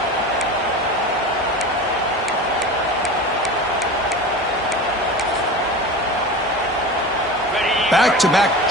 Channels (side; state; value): both; normal; correlation 0.31